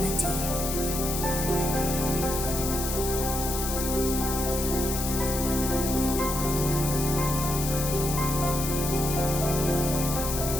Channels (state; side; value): noise; left; hiss, 4 dB below the sound